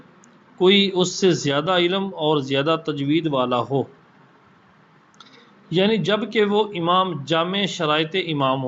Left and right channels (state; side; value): identical; both; correlation 1.00